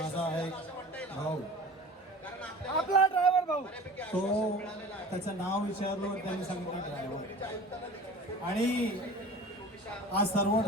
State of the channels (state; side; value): normal; both; correlation 0.39